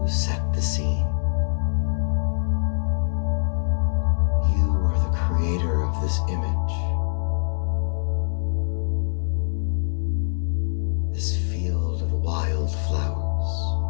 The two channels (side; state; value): right; silent; 63 dB below the other